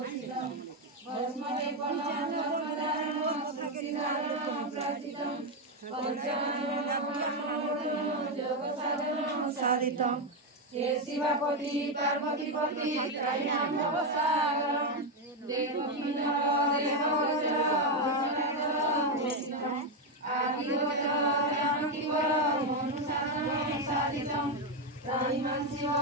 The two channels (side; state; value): both; normal; correlation 0.05